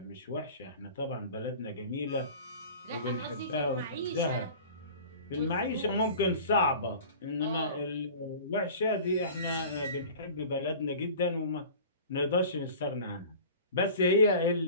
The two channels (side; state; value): both; inverted; correlation -0.40